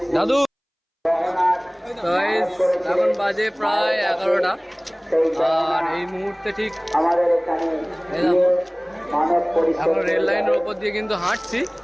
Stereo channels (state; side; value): identical; both; correlation 1.00